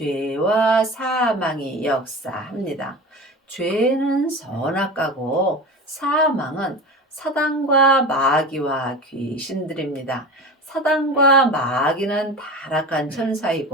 사망이 역사합니다. 죄는 선악과고 사망은 사단과 마귀와 귀신들입니다. 사단과 마귀는 타락한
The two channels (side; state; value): both; normal; correlation 0.31